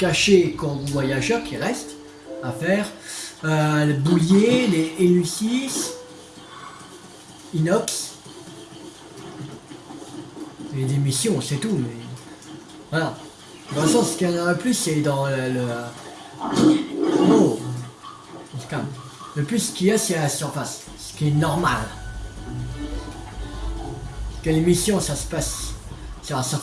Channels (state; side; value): identical; both; correlation 1.00